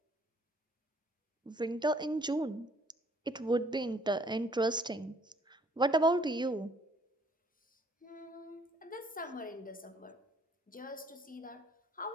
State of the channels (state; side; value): normal; both; correlation 0.62